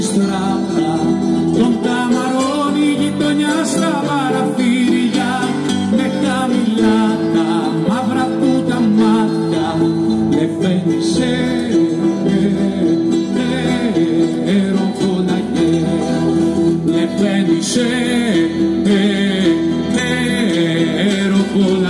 στράτα, τον καμαρώνει η γειτονιά στα παραθύρια, με χαμηλά τα μαύρα του τα μάτια, λεφένισε ροκολακέ, λεφένισε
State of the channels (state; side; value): identical; both; correlation 1.00